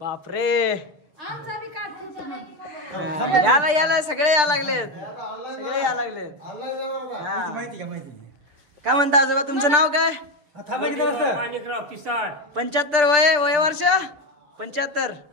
याला याला सगळे या लागलेत सगळे या लागलेत. हा. काय म्हणता आजोबा तुमचं नाव काय? माणिकराव पिसाळ. 75 वय वर्ष 75.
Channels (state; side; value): late; left; 6.7 ms